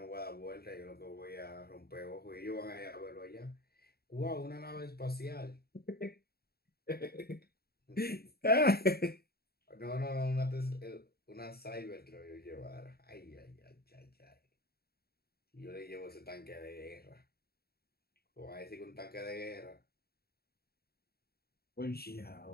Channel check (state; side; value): late; right; 0.45 ms